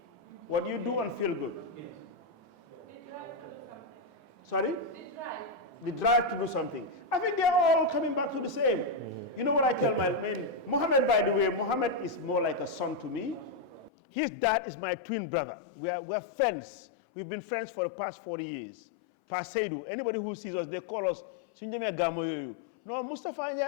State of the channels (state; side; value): drops out; right; at 13.9 s